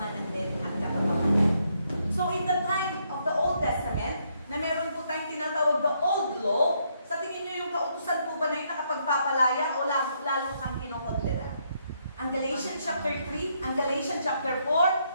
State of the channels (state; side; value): inverted; both; correlation -0.74